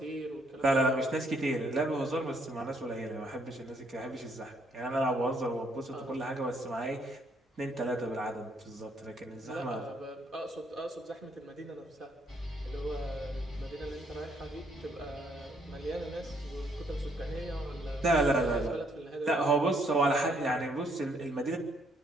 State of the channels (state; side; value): normal; both; correlation 0.69